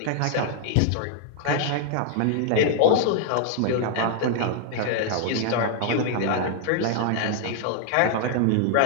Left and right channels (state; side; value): different; both; correlation 0.00